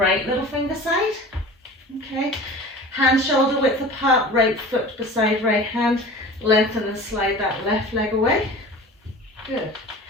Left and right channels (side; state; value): both; normal; correlation 0.39